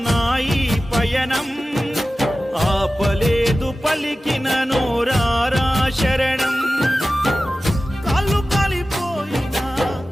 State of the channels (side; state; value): both; normal; correlation 0.95